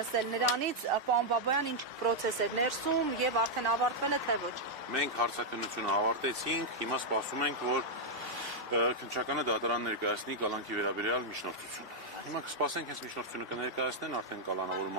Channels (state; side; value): normal; both; correlation -0.04